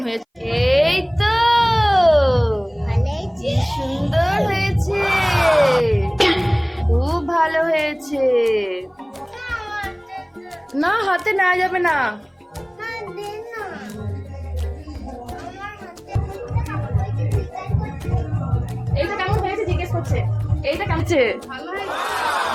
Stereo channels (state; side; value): identical; both; correlation 1.00